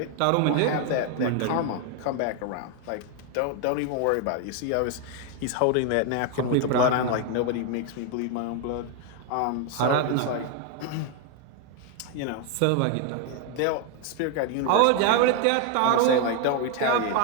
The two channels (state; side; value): different; both; correlation 0.01